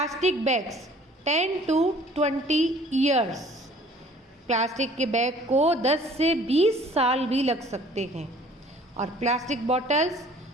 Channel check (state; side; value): normal; both; correlation 0.53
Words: bags 10 to 20 years, plastic के बैग को 10 से 20 साल भी लग सकते हैं. और प्लास्टिक बॉटल्स